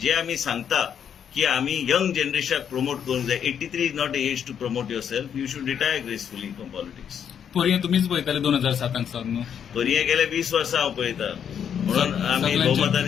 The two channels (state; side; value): quieter; right; 8.3 dB